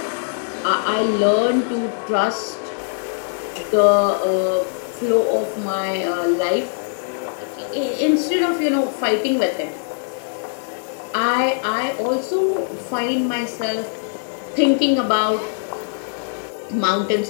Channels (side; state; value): right; silent; digital silence